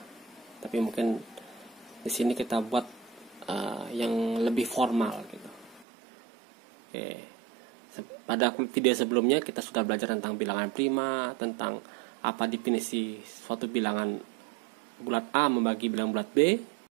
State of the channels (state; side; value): drops out; left; at 5.9 s